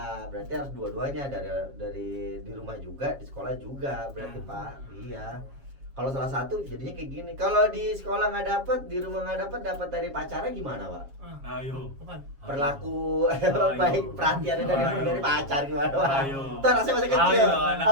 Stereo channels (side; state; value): left; late; 7.3 ms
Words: Berarti harus dua-duanya dari di rumah juga, di sekolah juga. Berarti Pak, iya. Kalau salah satu jadinya kayak gini. Kalau di sekolah nggak dapat, di rumah nggak dapat dari pacarnya gimana Pak? Ayo. bukan. Perlaku Ayo. baik perhatiannya dari Ayo. pacar gimana Pak? Ayo. Tuh anak saya masih kecil. Ayo, anak